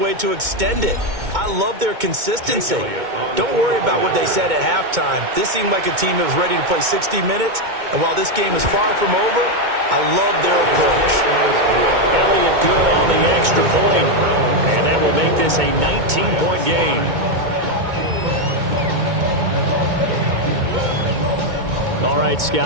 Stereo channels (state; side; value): late; left; 2.2 ms